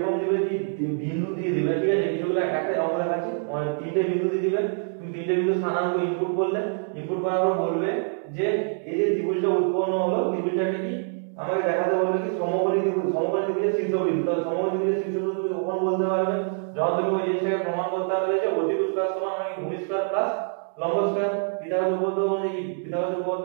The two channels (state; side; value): silent; left; 60 dB below the other